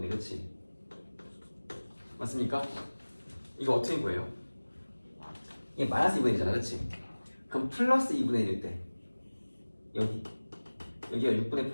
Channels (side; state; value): both; inverted; correlation -1.00